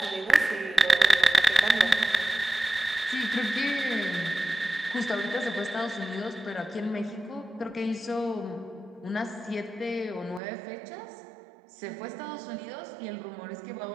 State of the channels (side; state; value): left; drops out; at 10.4 s